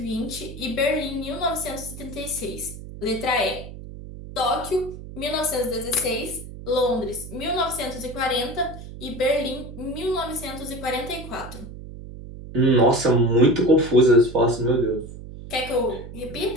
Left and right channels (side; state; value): right; noise; hum, 13 dB below the sound